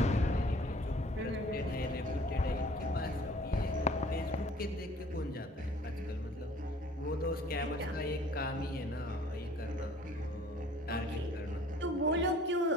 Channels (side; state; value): both; normal; correlation 0.53